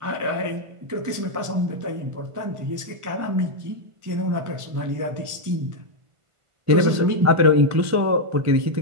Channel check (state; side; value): late; left; 1.5 ms